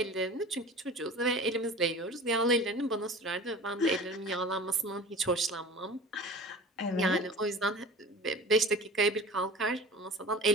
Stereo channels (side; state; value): both; normal; correlation 0.39